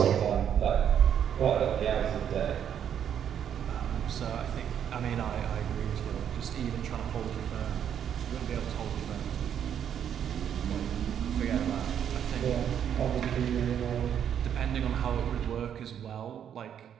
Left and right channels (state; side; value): quieter; left; 9.0 dB